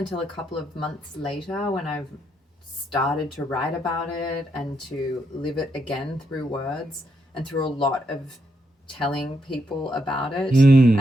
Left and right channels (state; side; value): normal; both; correlation 0.79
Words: a couple of months later, when I've started to write about it and to live it again through words and through a lot of telling people about it